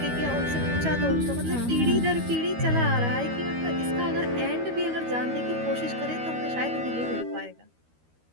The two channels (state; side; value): late; left; 12 ms